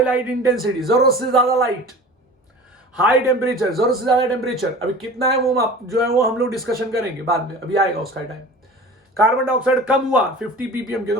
लाइट इंटेंसिटी, जरूरत से ज्यादा लाइट, हाई टेम्परेचर, जरूरत से ज्यादा टेम्परेचर। अभी कितना है वो जो है वो हम लोग डिस्कशन करेंगे बाद में, अभी आएगा उसका टाइम। कार्बन डाइऑक्साइड कम हुआ 50 ppm के, तो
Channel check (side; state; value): both; normal; correlation 0.39